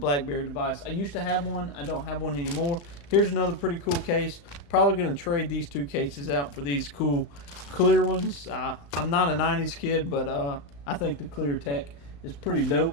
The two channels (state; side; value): late; right; 35 ms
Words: device. I used to have one. I don't have one anymore. Here's another pretty cool case. Probably going to trade these two cases out for these cool clear ones. I'm not a 90s kid, but I think the clear tech is pretty